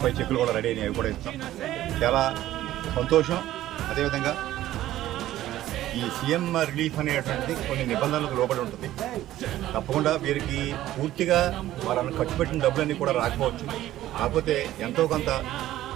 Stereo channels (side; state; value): left; quieter; 14.1 dB